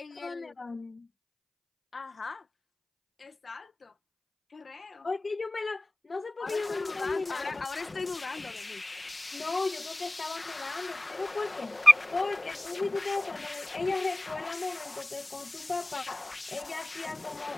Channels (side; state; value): both; normal; correlation 0.97